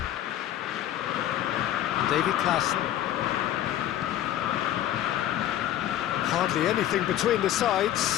David Klassen. Hardly anything between the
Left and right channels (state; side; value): quieter; right; 12.2 dB